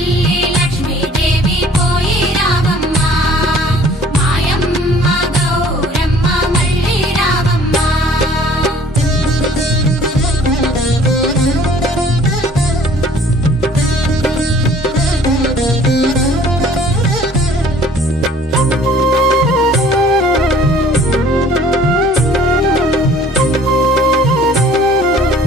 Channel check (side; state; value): both; normal; correlation 0.53